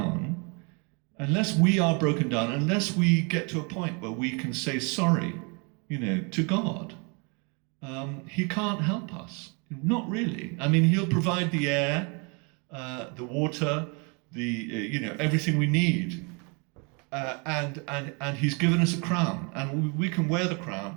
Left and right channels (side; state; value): left; quieter; 33.1 dB